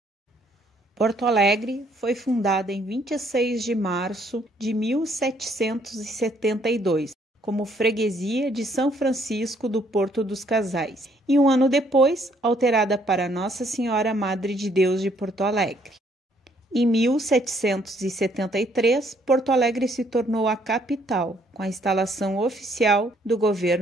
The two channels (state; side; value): normal; both; correlation 0.66